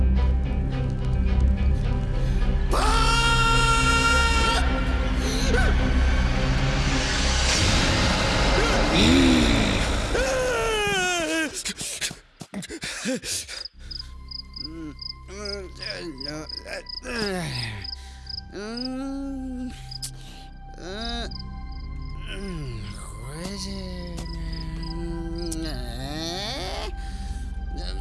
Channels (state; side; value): identical; both; correlation 1.00